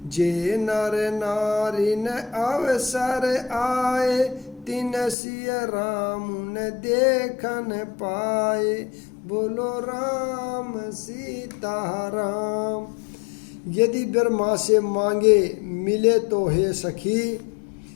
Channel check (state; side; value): drops out; right; at 5.2 s